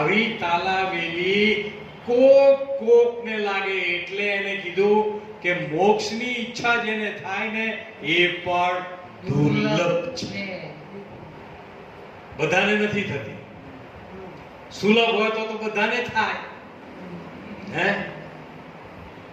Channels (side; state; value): both; identical; correlation 1.00